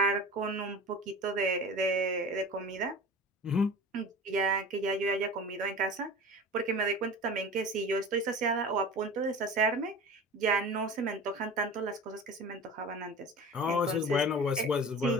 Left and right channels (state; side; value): normal; both; correlation 0.35